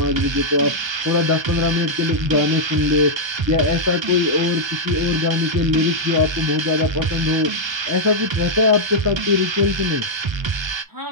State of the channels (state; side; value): late; left; 1.3 ms